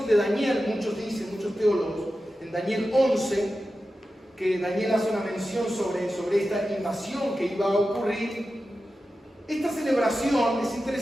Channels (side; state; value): both; normal; correlation 0.92